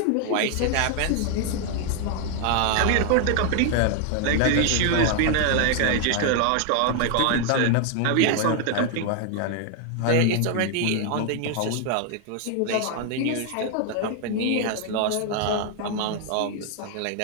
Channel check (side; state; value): both; different; correlation 0.00